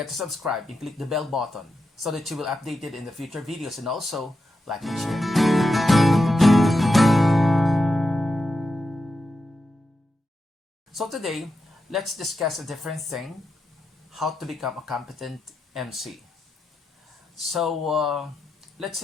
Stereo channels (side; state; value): both; normal; correlation 0.88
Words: to subscribe and click the bell button so that you will update it in the future videos and also like and share. So today, let's discuss a different thing, how to become a competent MC. So let's